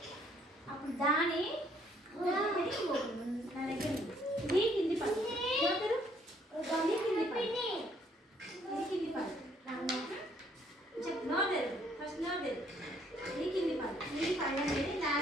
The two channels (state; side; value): normal; both; correlation 0.65